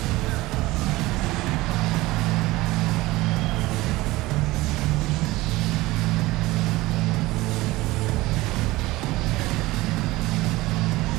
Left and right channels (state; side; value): quieter; left; 19.5 dB